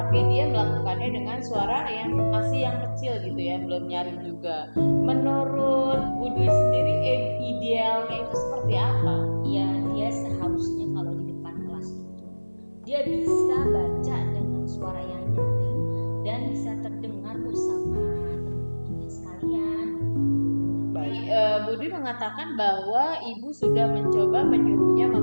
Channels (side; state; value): both; inverted; correlation -1.00